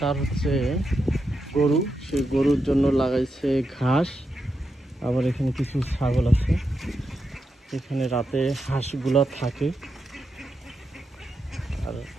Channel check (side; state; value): both; normal; correlation 0.85